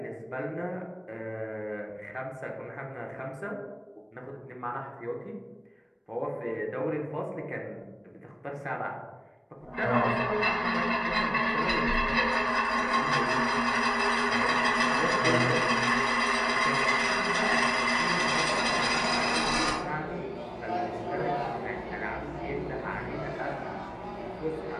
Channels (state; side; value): identical; both; correlation 1.00